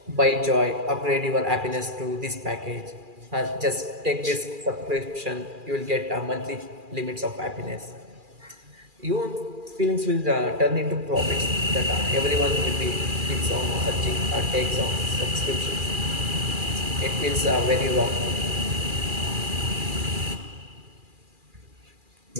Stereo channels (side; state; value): left; late; 2.4 ms